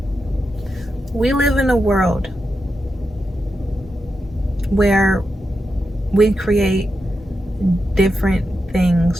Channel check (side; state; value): both; normal; correlation 0.87